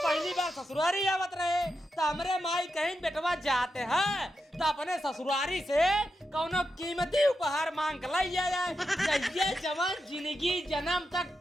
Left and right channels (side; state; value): both; normal; correlation 0.87